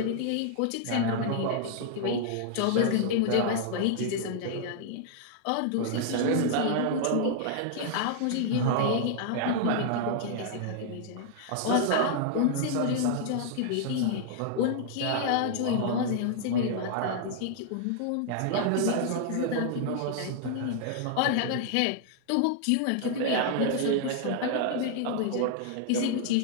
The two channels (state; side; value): different; both; correlation -0.01